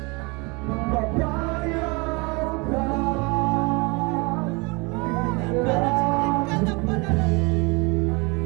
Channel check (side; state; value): left; quieter; 28.1 dB